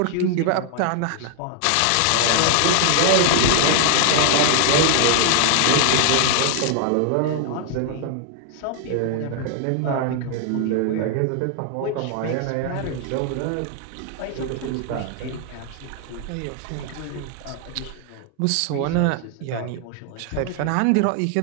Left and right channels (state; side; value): different; both; correlation 0.00